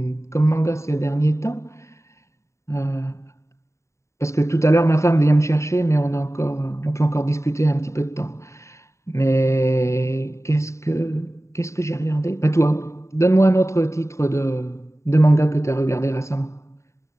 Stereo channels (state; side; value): late; right; 0.14 ms